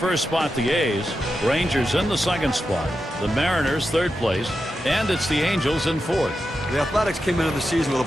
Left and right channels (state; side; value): normal; both; correlation 0.89